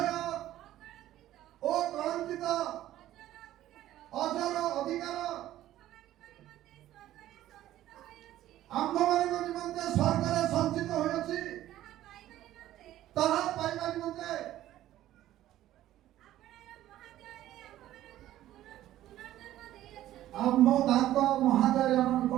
ଓ କଳଙ୍କିତ ଅଜର ଅଧିକାର ଆମ୍ଭମାନଙ୍କ ନିମନ୍ତେ ସ୍ୱର୍ଗରେ ସଞ୍ଚିତ ହୋଇଅଛି ତାହା ପାଇବା ନିମନ୍ତେ ଆମ ତାଙ୍କ ମହାଦୟରେ ଆମକୁ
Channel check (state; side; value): quieter; left; 13.7 dB